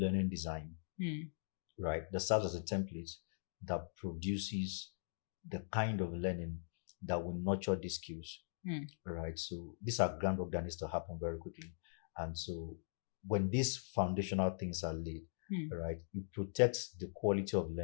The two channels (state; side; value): silent; right; digital silence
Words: design, right? That serves as a template that produces the kind of learning that will nurture these skills, right? So these are groundwork that needs to happen very quickly. And so when these foundational things are laid, right, it protects the quality of